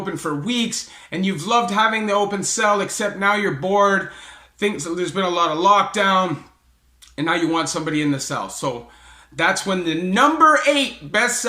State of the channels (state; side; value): identical; both; correlation 1.00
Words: for weeks and you've loved having the open cell, except now you're bored, there's been a lot of lockdown, and now you want somebody in the cell. So that's when the number 8 best